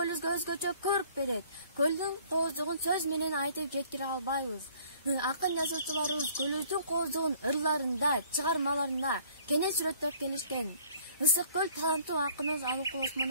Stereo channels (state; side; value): inverted; both; correlation -0.56